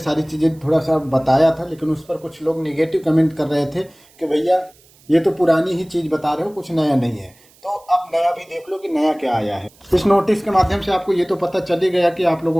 चीज़ें थोड़ा सा बताया था, लेकिन उस पर कुछ लोग नेगेटिव कमेंट कर रहे थे कि भैया ये तो पुरानी ही चीज़ बता रहे हो, कुछ नया नहीं है। तो अब नया भी देख लो कि नया क्या आया है। इस नोटिस के माध्यम से आपको ये तो पता चल ही गया कि आप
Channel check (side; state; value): right; noise; hiss, 29 dB below the sound